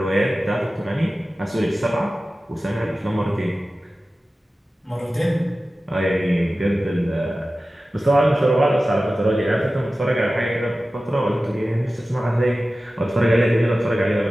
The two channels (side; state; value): both; normal; correlation 0.95